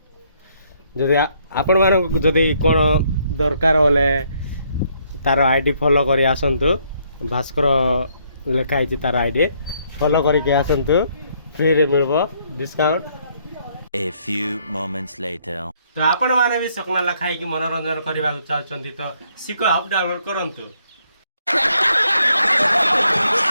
जदि आपण मानक जदि कोन दरकार होले तार आईडी फॉलो करी आसंतु भास्कर लिखा है तार आईडी फॉलो करके आसंतु फ्री रे मिलबो discount. A few moments later. तो आपण माने भी सकनाला खाई कि मनोरंजन करबा चाहछंती तो सिको ऐप डाउनलोड करंतु।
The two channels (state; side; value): inverted; both; correlation -0.70